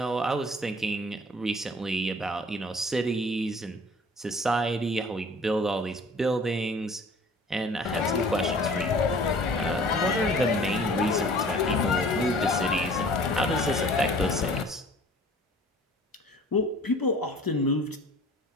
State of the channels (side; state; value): both; normal; correlation 0.49